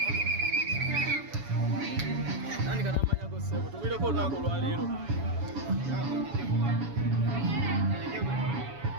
tandika n'amanyago ssebo tugulireko olunaku olwaleero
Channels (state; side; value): late; left; 7.1 ms